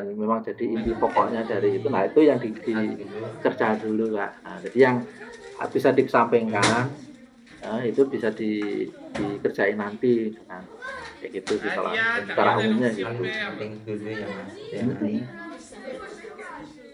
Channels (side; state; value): both; identical; correlation 1.00